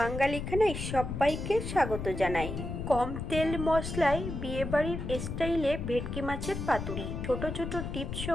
সবাইকে স্বাগত জানাই। কম তেল মশলায় বিয়েবাড়ির স্টাইলে ভেটকি মাছের পাতুরি। ছোট ছোট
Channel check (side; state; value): left; noise; rumble, 5 dB below the sound